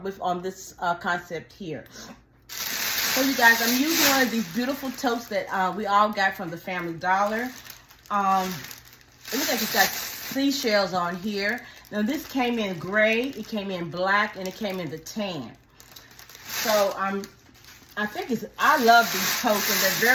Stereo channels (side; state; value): both; identical; correlation 1.00